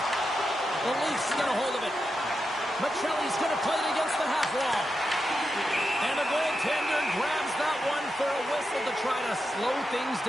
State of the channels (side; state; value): both; normal; correlation 0.88